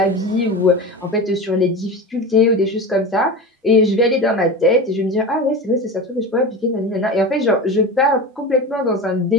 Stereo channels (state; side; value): normal; both; correlation 0.27